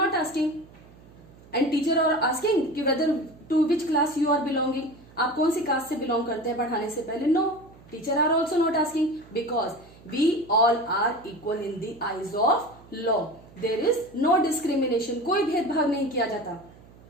asking. And teacher are asking कि whether to which class you are belonging. आप कौन सी कास्ट से बिलोंग करते हैं पढ़ाने से पहले? No, teacher are also not asking because we all are equal in the eyes of law. There is no discrimination. कोई भेदभाव नहीं किया जाता.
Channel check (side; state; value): right; noise; hum, 23 dB below the sound